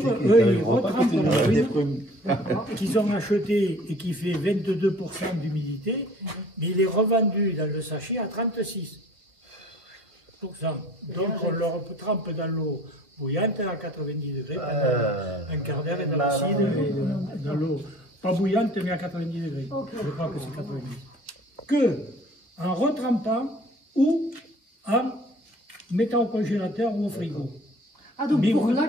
eux, ils retrempent dans la prune qu'ils ont acheté et qui fait 22% d'humidité, mais il est revendu dans le sachet à 36%. Donc on leur trempe dans l'eau bouillante à 90 degrés pendant un quart d'heure dans l'acide et dans l'eau pas bouillante mais à 90 degrés. Je crois que c'est 90. Que en retrempant ou en mettant au congélateur ou au frigo. Ah donc pour la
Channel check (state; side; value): late; left; 2.1 ms